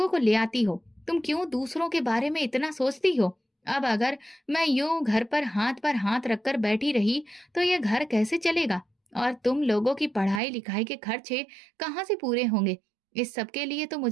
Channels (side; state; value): left; drops out; at 10.4 s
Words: को ले आती हो, तुम क्यों दूसरों के बारे में इतना सोचती हो? अब अगर मैं यूं घर पर हाथ रखकर बैठी रही तो ये घर कैसे चलेगा? और तुम लोगों की पढ़ाई लिखाई के खर्चे कहाँ से पूरे होंगे? इस सब के लिए तो